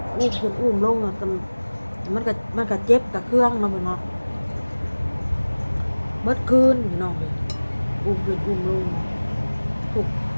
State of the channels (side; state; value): both; inverted; correlation -1.00